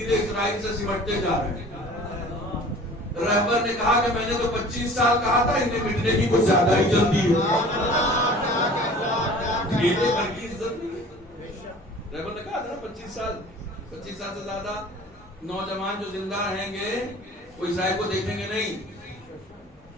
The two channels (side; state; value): both; normal; correlation 0.45